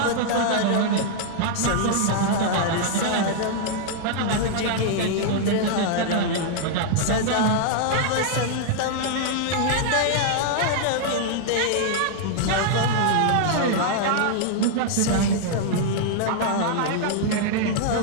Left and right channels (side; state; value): both; different; correlation -0.01